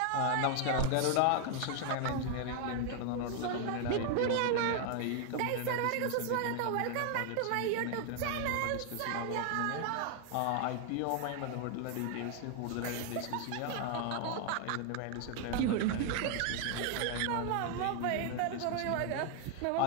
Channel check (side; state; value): both; different; correlation 0.00